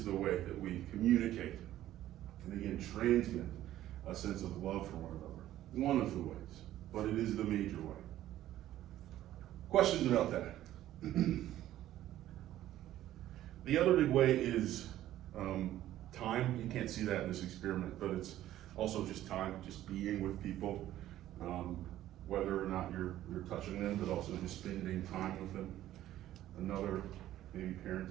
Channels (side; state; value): left; quieter; 13.4 dB